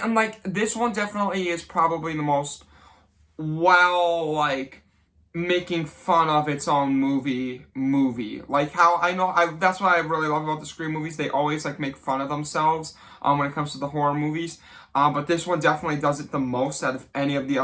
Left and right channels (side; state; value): both; identical; correlation 1.00